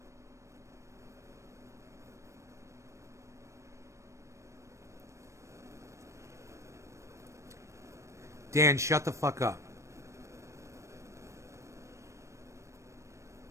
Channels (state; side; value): late; left; 0.14 ms